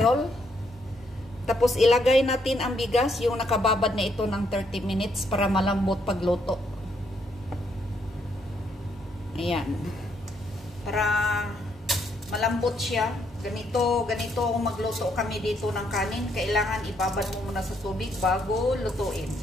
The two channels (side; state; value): both; normal; correlation 0.73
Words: Tapos, ilagay natin ang bigas, yung nakababad na ito ng 30 minutes para malambot pagluto. Ayan. Para malambot siya. Ganito kung magluto kami dito ng kanin, kailangan ibabad mo muna sa tubig bago lutuin.